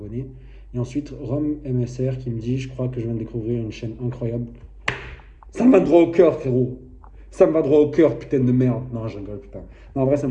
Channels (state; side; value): identical; both; correlation 1.00